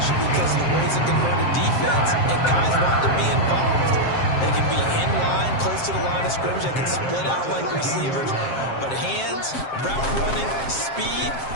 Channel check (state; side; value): late; right; 7.5 ms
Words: because of the ways it can hurt a defense, and guys want to be involved. They can be in line, close to the line of scrimmage. They can split out like receivers. But hands, route running, speed,